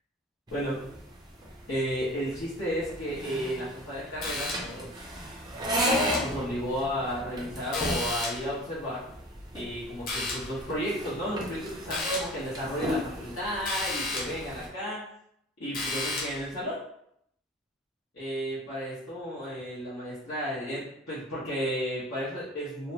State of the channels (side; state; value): both; normal; correlation 0.40